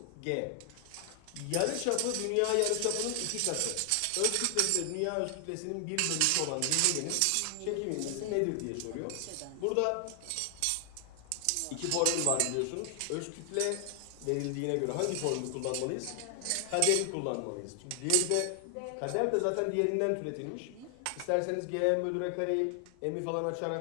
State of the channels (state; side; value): different; both; correlation 0.00